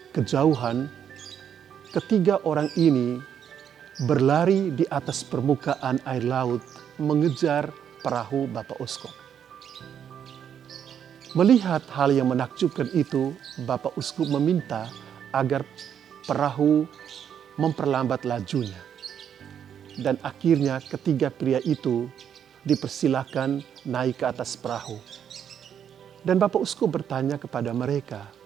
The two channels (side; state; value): left; quieter; 8.7 dB